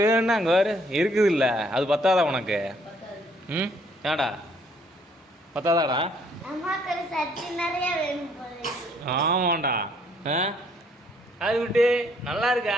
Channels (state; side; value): normal; both; correlation 0.65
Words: வேணும்னா அங்கே வேறு இருக்குது இல்லை, அது பத்தாதா உனக்கு? ம் ஏடா பத்தாதாடா? ஆமாண்டா. அது விட்டு நல்லா